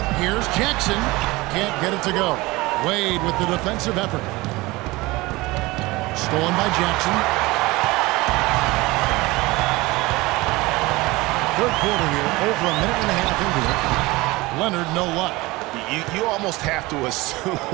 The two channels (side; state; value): left; quieter; 21.5 dB